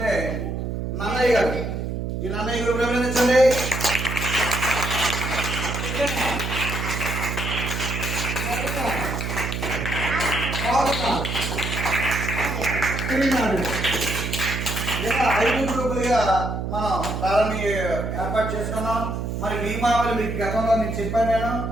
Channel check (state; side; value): noise; right; hum, 3 dB below the sound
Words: నన్నయ్య గారు. ఈ నన్నయ్య గారు అభినందించండి. ఇలా 5 గ్రూపులుగా మనం ప్రారంభ ఏర్పాటు చేసుకున్నాం. మరి నియమావళి మీకు గతంలో నేను చెప్పాను. నేను